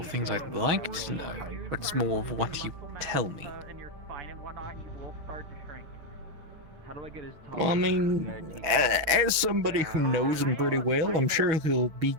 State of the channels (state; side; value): late; left; 6.3 ms